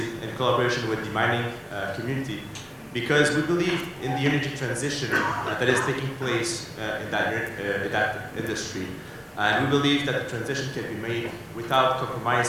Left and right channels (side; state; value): both; identical; correlation 1.00